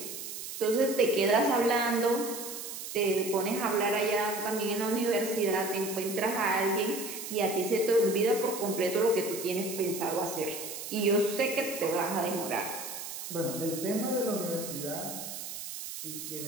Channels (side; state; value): right; noise; hiss, 8 dB below the sound